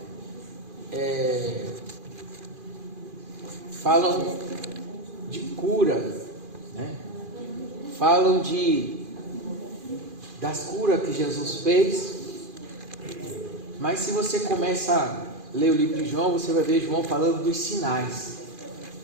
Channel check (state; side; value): late; left; 2.4 ms